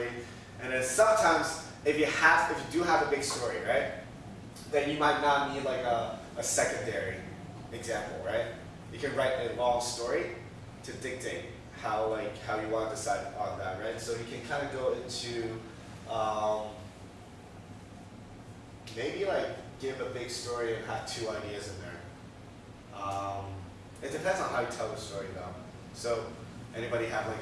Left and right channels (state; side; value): identical; both; correlation 1.00